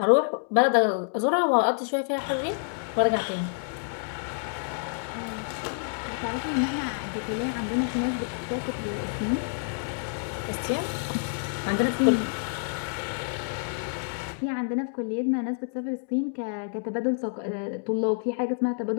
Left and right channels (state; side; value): silent; right; digital silence